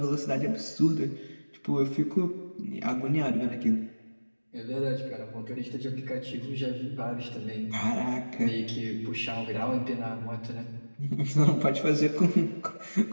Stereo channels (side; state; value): both; inverted; correlation -1.00